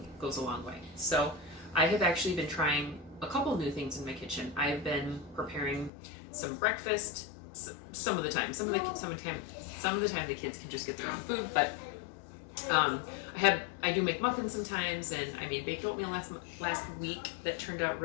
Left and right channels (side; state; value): right; drops out; at 5.9 s